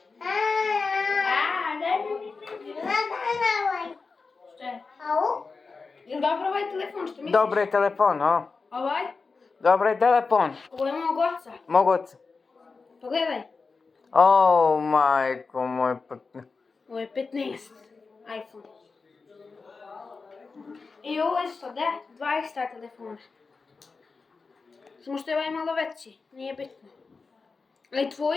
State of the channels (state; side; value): quieter; right; 4.4 dB